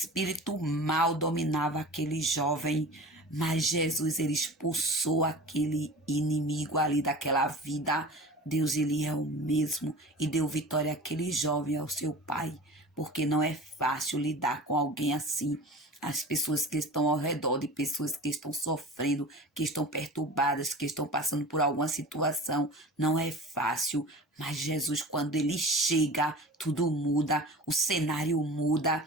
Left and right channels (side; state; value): both; normal; correlation 0.36